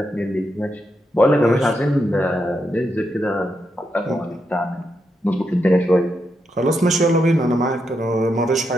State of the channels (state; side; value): normal; both; correlation 0.83